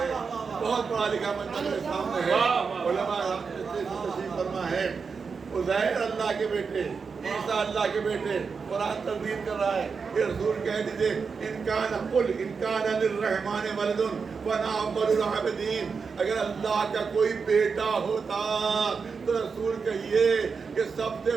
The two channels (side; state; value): left; quieter; 5.3 dB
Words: بہت پڑھا لکھا میرے سامنے ہے. علماء تشریف فرما ہے عزیر اللہ کے بیٹے، عیسیٰ اللہ کے بیٹے. قرآن تردید کر رہا ہے کہ رسول کہہ دیجئے ان کان للرحمن ولد فانا اول العابدین. اگر اللہ کا کوئی بیٹا ہوتا تو رسول کہیے کہ سب سے